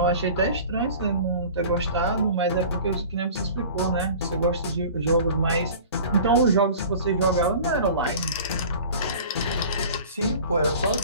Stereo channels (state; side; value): inverted; both; correlation -0.42